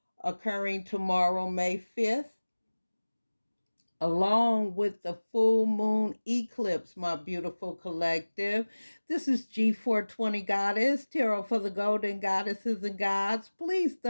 occurring tomorrow, May 5th, along with the full moon eclipse, my beautiful collective. This is G420 Goddess, Tarot for the Golden Goddesses and Gods. Please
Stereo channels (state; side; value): inverted; both; correlation -1.00